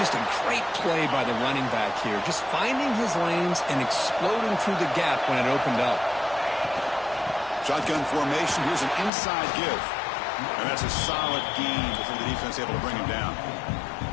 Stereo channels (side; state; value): right; drops out; at 9.1 s